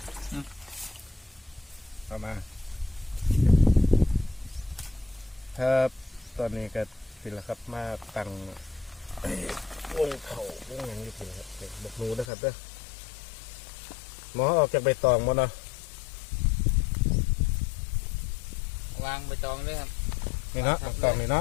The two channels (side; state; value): right; drops out; at 12.2 s